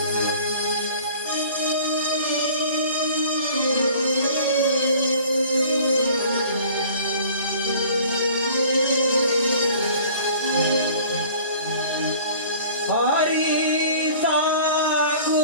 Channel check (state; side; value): inverted; both; correlation -0.48